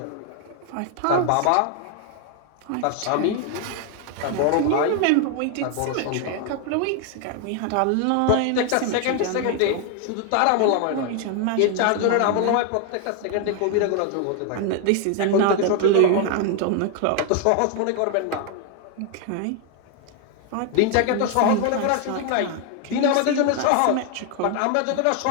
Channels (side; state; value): both; different; correlation 0.00